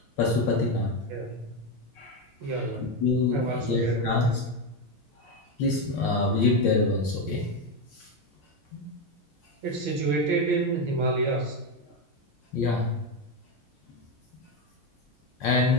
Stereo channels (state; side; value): normal; both; correlation 0.10